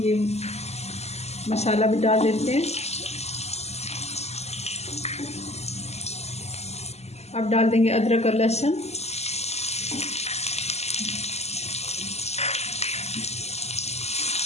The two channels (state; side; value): late; right; 0.31 ms